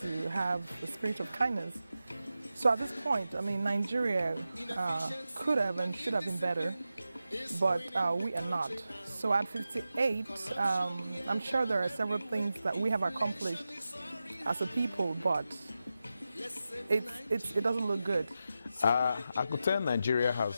to have the spirit of kindness. So at this point, Nigeria could have and should have been better, but we are not. So at 58, I'm sure there are several things that we have accomplished as a people, but it doesn't look good. I could tell Nigeria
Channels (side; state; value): both; inverted; correlation -0.92